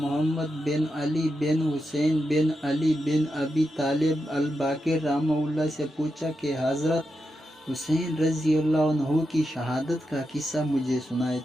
بن علی بن حسین بن علی بن ابی طالب الباقر رحمہ اللہ سے پوچھا کہ حضرت حسین رضی اللہ عنہ کی شہادت کا قصہ مجھے سنائے،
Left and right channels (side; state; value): both; normal; correlation 0.87